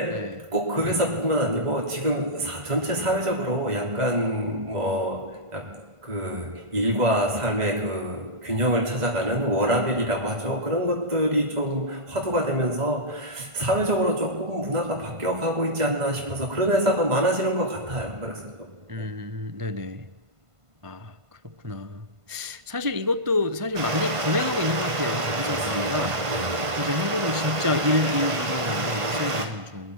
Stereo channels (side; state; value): left; late; 1.5 ms